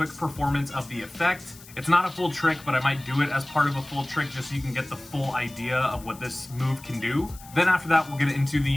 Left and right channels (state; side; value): noise; left; hiss, 20 dB below the sound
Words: performance of the effect. It's not a full trick, but I might do it as part of a full trick just so you can get the full idea of what this move can do. Then after that, we'll get into